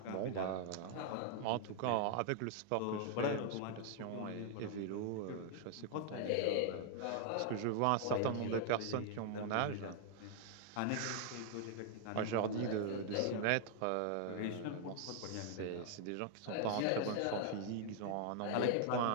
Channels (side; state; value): both; different; correlation 0.00